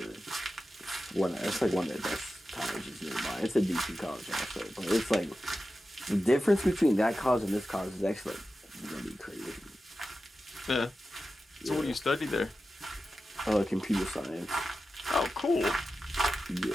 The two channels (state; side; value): normal; both; correlation 0.92